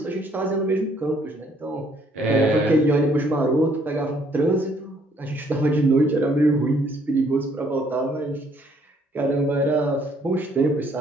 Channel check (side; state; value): both; normal; correlation 0.65